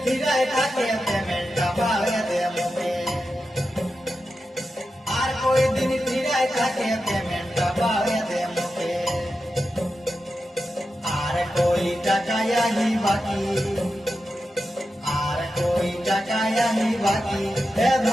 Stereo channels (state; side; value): normal; both; correlation 0.90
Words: ফিরায় থাকে পেমেন্টটা পাবে দে মুখে আর কই দিন ফিরায় থাকে পেমেন্টটা পাবে দে মুখে আর কই টাকায়াহি বাকি আর কই টাকায়াহি বাকি এ